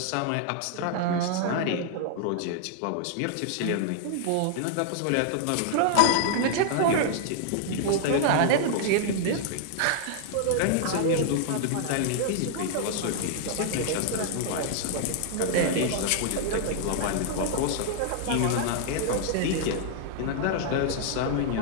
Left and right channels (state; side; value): different; both; correlation -0.01